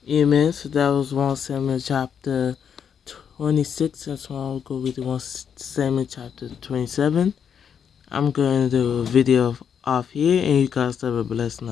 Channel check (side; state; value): right; quieter; 7.7 dB